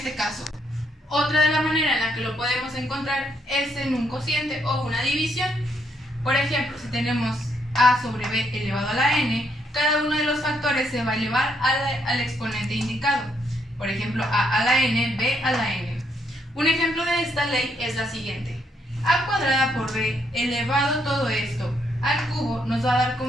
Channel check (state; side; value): normal; both; correlation 0.74